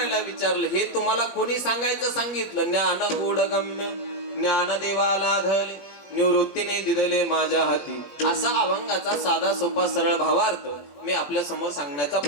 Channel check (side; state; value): right; late; 21 ms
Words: विचारलं, हे तुम्हाला कोणी सांगायचं सांगितलं? ज्ञान गूढ गम्य ज्ञान देवाला धले निवृत्तीने दिदले माझ्या हाती, असा अभंगाचा साधा सोपा सरळ भावार्थ मी आपल्या समोर सांगण्याचा